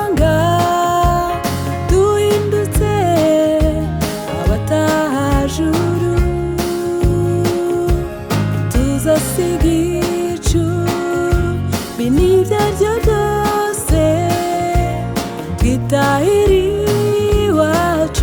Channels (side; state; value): both; identical; correlation 1.00